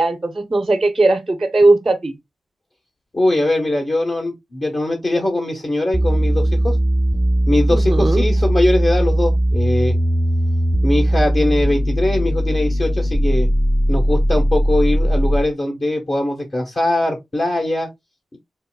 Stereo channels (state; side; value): normal; both; correlation 0.96